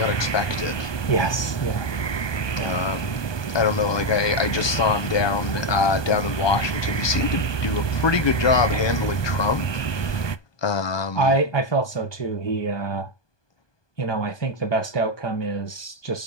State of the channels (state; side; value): late; right; 1.2 ms